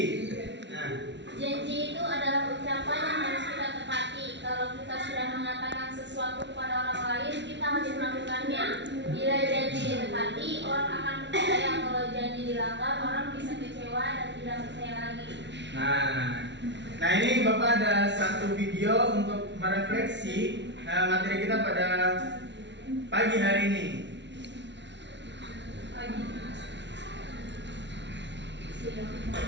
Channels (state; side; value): late; left; 0.51 ms